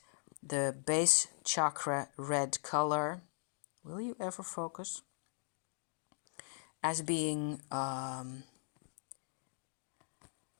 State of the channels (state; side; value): silent; right; digital silence